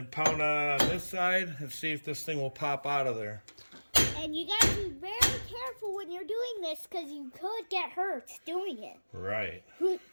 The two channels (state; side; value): inverted; both; correlation -1.00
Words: pound on it on this side, and see if this thing will pop out of there. And you gotta be very careful when you're doing this, because you could get hurt doing it. Right.